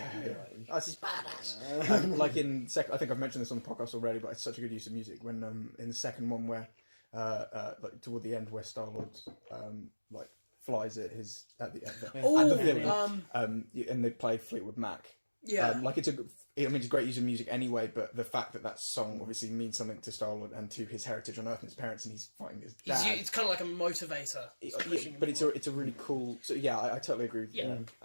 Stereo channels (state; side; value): inverted; both; correlation -1.00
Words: That's just badass. Like in I think I've mentioned this on the podcast already, but it's such a good use of music. When in the second one, where like toward the end, where Star-Lord like flies at the villain, and they play Fleetwood Mac. Yeah. Like it's it's great use of music anyway, but the fact that song obviously means something to Star-Lord and to his heritage on Earth and his parents, and he's fighting his dad. It's kind of like a motivator. But it's a really cool. So yeah, I totally agree with you.